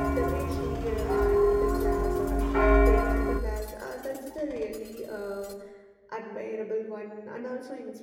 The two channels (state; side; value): identical; both; correlation 1.00